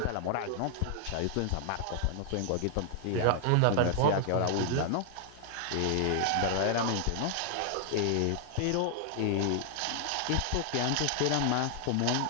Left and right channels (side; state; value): both; different; correlation 0.00